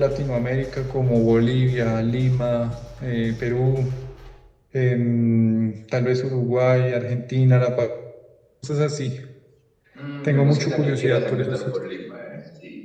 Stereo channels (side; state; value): both; identical; correlation 1.00